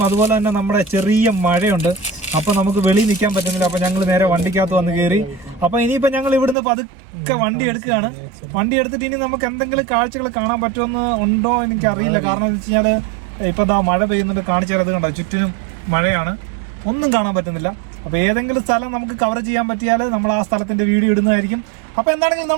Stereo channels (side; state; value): left; drops out; at 6.6 s